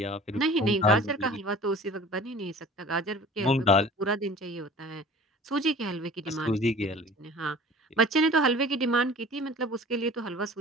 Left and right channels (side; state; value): both; normal; correlation 0.44